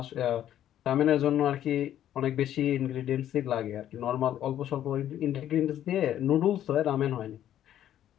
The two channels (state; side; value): quieter; right; 11.3 dB